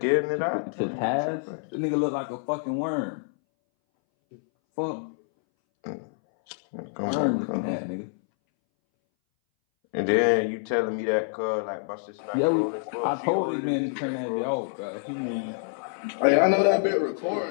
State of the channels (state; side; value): silent; right; 60 dB below the other